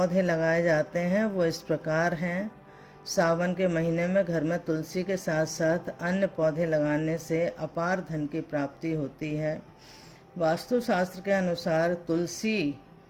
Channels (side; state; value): both; identical; correlation 1.00